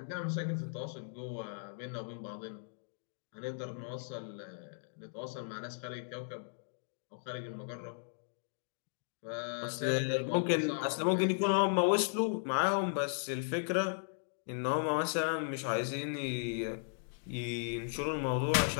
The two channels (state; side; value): silent; right; digital silence